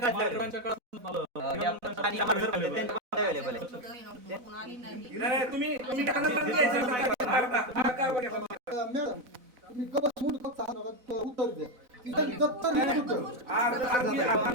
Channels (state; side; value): late; left; 4.0 ms